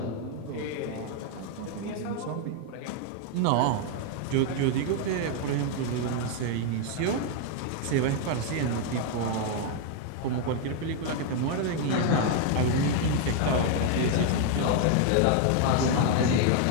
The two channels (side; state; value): both; different; correlation 0.00